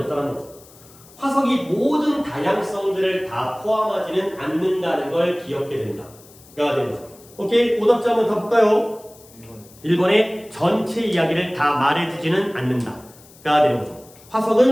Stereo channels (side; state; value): left; noise; hiss, 24 dB below the sound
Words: 거죠. 화석이 모든 다양성들을 다 포함하지는 않는다는 걸 기억해야 된다가 되는 거죠. 오케이, 오답자 한번 더 볼까요? 1번의 전체 이야기를 다 말해주지는 않는다가 되는 거죠.